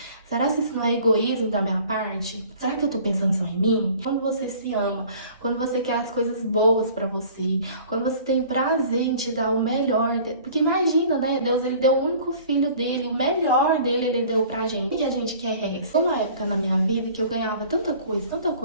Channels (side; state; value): both; inverted; correlation -0.49